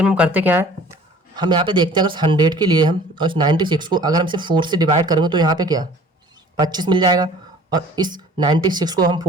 में हम करते क्या है, हम यहाँ पे देखते हैं अगर 100 के लिए हम और इस 96 को अगर हम इसे 4 से डिवाइड करेंगे तो यहाँ पे क्या 25 मिल जाएगा, और इस 96 को हम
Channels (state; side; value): normal; both; correlation 0.49